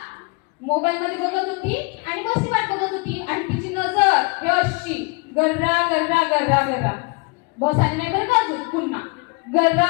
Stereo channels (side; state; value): right; quieter; 29.3 dB